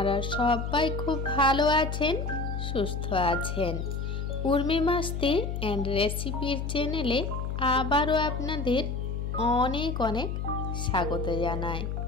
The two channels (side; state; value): left; noise; hum, 3 dB below the sound